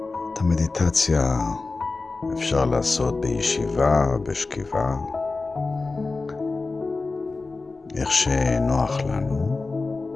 את המדיטציה אפשר לעשות בישיבה, בשכיבה, איך שנוח לנו.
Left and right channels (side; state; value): right; quieter; 3.7 dB